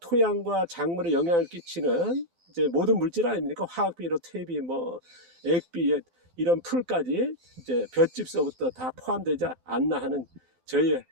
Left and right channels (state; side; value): late; left; 12 ms